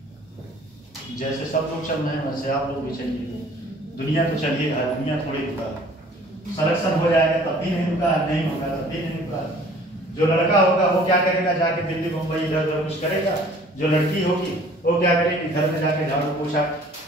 जैसे सब लोग चल रहे हैं वैसे आप लोग भी चलिए। दुनिया तो चलिए, दुनिया थोड़ी रुका। सिलेक्शन हो जाएगा तब भी नहीं रुका, नहीं होगा तब भी नहीं रुका। जो लड़का होगा वो क्या करेगा, जाके दिल्ली मुंबई इधर उधर कुछ करेगा। जो लड़की होगी वो क्या करेगी, घर में जाके झाड़ू पोछा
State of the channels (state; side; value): normal; both; correlation 0.53